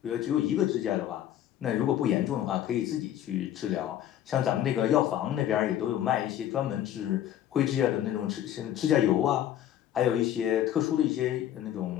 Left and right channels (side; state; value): right; quieter; 11.5 dB